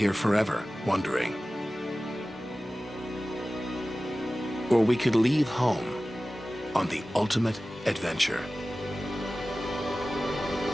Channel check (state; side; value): normal; both; correlation 0.96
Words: forever wondering. Or we could leave home on the ultimate adventure.